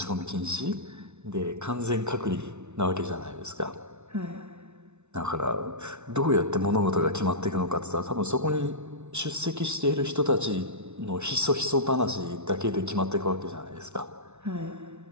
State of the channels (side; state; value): left; late; 0.82 ms